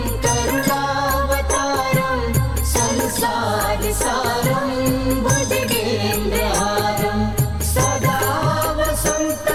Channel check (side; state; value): both; identical; correlation 1.00